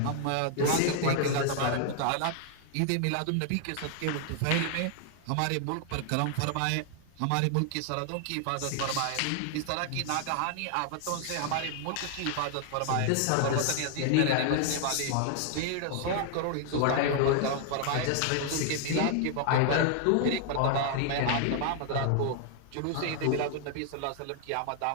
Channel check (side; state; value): both; different; correlation 0.00